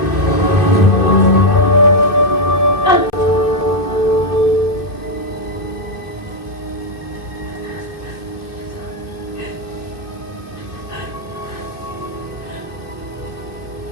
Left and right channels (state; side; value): late; right; 2.6 ms